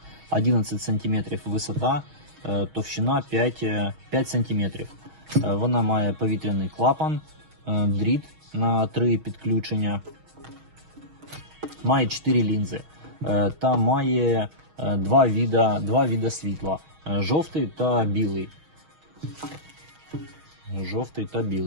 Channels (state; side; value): late; left; 6.4 ms